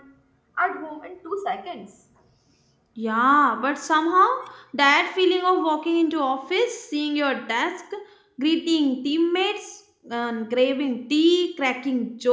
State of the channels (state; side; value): identical; both; correlation 1.00